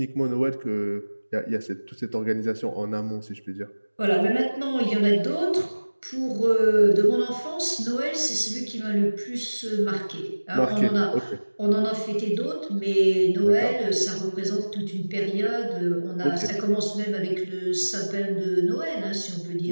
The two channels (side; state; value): both; inverted; correlation -1.00